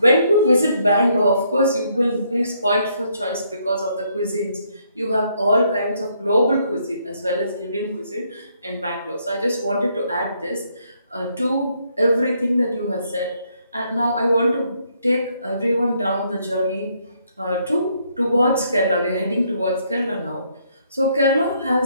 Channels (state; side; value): inverted; both; correlation -0.71